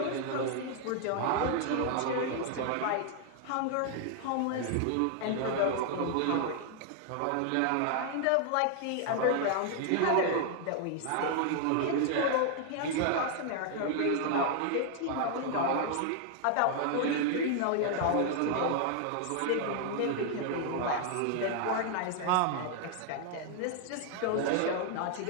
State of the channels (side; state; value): both; different; correlation 0.00